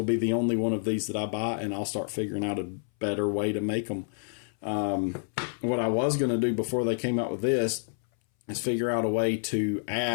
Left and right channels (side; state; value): right; silent; 59 dB below the other